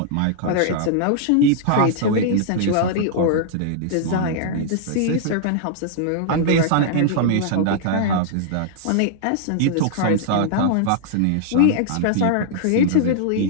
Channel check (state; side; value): different; both; correlation -0.01